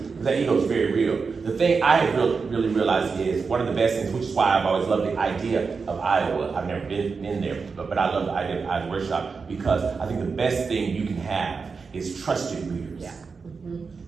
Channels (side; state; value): left; quieter; 5.0 dB